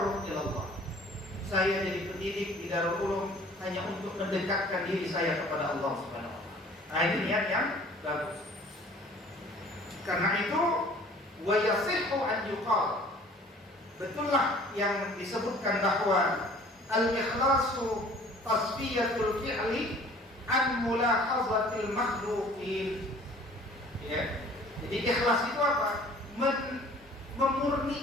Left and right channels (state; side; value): normal; both; correlation 0.51